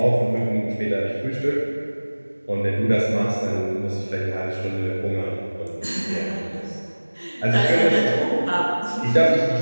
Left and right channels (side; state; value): both; inverted; correlation -1.00